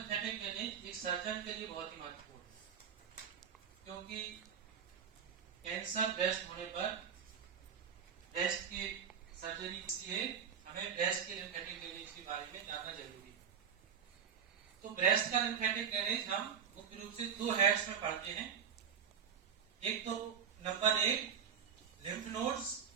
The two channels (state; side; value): quieter; left; 7.5 dB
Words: ड्रेनेज एक सर्जन के लिए बहुत ही महत्वपूर्ण है, क्योंकि कैंसर ब्रेस्ट होने पर ब्रेस्ट की सर्जरी के लिए हमें ब्रेस्ट के लिम्फेटिक ड्रेनेज के बारे में जानना जरूरी है। तो ब्रेस्ट का लिम्फेटिक ड्रेनेज हम मुख्य रूप से दो हेड्स में पढ़ते हैं। एक तो नंबर 1 लिम्फ नोड्स,